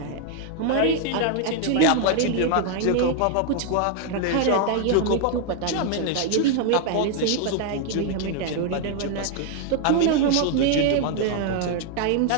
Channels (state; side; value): different; both; correlation 0.00